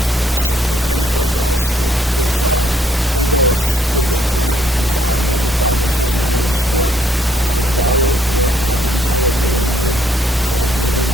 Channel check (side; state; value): both; normal; correlation 0.69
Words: don't think anybody else is, they've already did their term. Name of the Father, Son, and Holy Spirit. Amen. Our Father, who art in heaven, hallowed be thy name. Thy kingdom